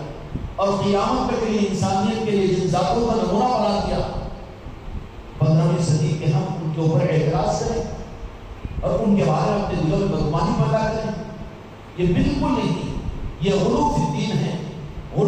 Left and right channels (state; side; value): identical; both; correlation 1.00